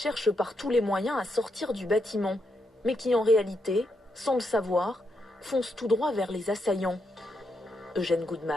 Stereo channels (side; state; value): both; normal; correlation 0.80